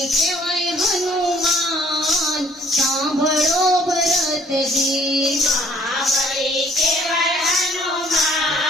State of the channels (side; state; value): both; normal; correlation 0.59